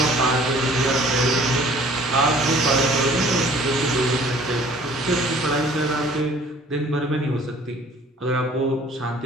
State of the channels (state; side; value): normal; both; correlation 0.53